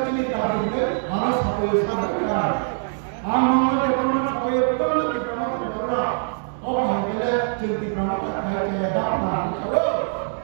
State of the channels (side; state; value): left; silent; digital silence